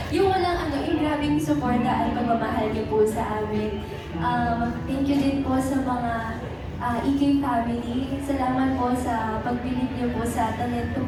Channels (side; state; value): both; identical; correlation 1.00